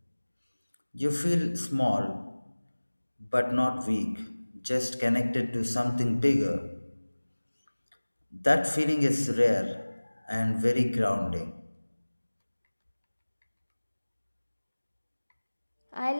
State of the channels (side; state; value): both; inverted; correlation -1.00